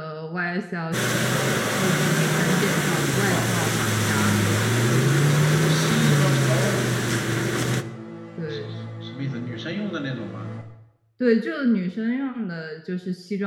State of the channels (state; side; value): identical; both; correlation 1.00